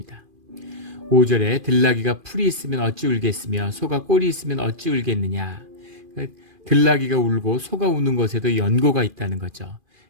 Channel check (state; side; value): late; left; 2.4 ms